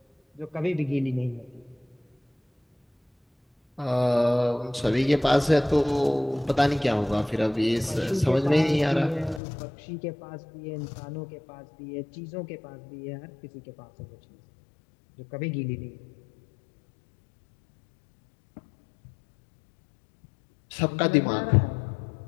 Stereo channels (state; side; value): drops out; right; at 9.4 s